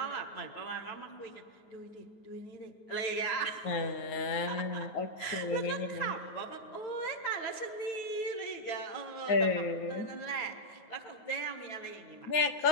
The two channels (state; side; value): late; right; 9.3 ms